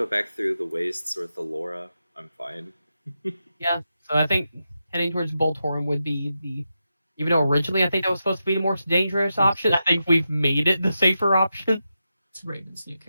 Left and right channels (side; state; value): both; inverted; correlation -0.88